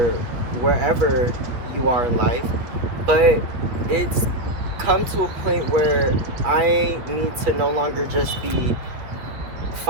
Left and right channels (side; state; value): left; late; 8.3 ms